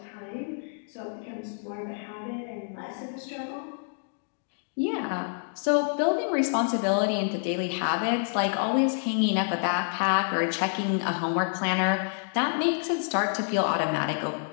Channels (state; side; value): silent; right; digital silence